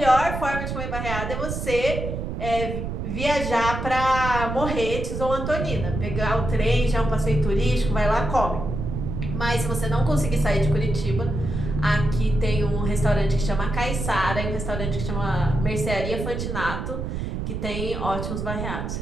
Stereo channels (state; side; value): noise; right; rumble, 4 dB below the sound